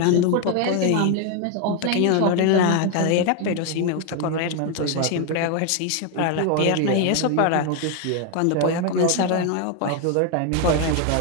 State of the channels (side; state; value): both; different; correlation 0.01